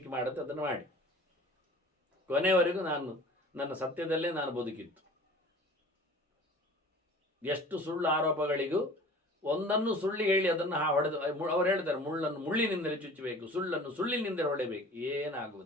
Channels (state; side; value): normal; both; correlation 0.44